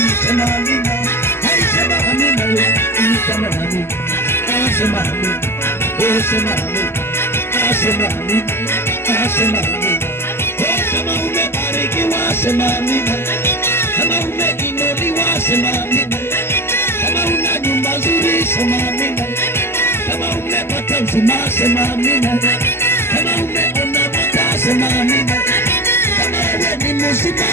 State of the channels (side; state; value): right; late; 0.12 ms